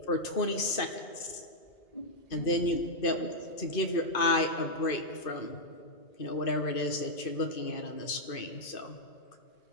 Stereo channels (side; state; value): right; late; 2.5 ms